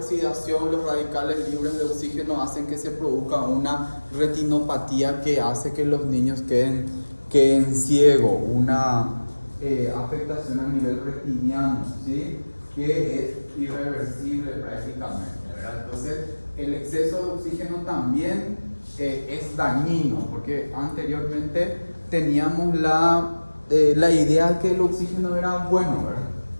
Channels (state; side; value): inverted; both; correlation -1.00